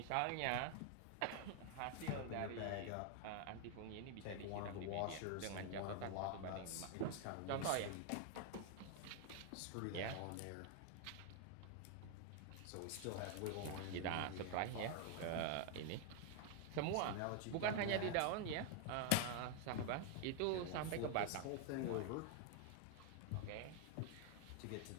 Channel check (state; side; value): different; both; correlation 0.00